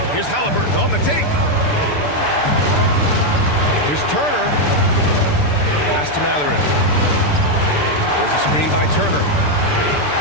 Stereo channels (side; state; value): right; late; 6.8 ms